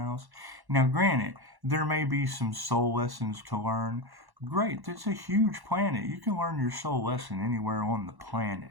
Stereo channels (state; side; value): late; left; 1.1 ms